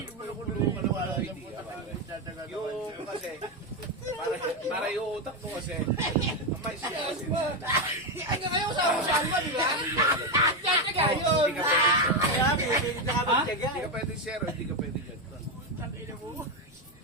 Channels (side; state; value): left; noise; rumble, 27 dB below the sound